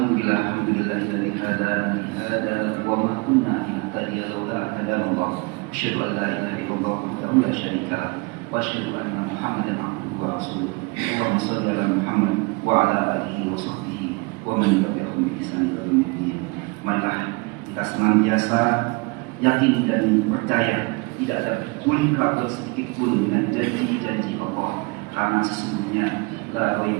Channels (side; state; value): left; quieter; 28.4 dB